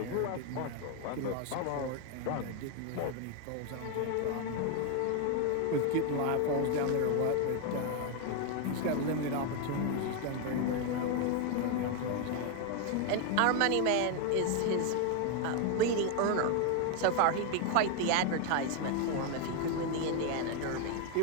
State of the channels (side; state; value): both; different; correlation 0.01